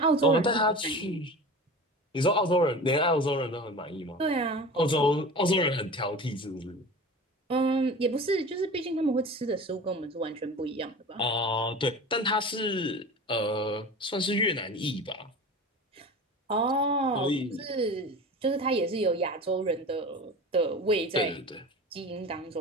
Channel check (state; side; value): normal; both; correlation 0.34